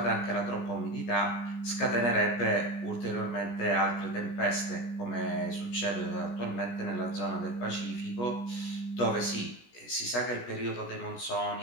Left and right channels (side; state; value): right; late; 17 ms